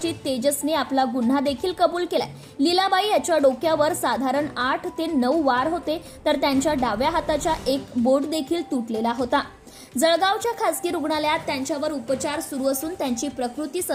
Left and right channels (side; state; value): both; identical; correlation 1.00